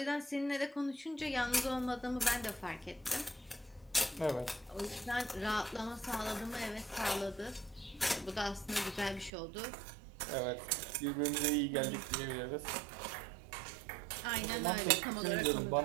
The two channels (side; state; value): left; drops out; at 9.3 s